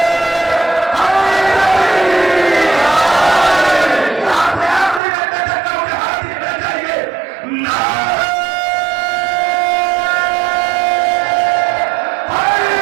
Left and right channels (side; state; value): left; drops out; at 5.0 s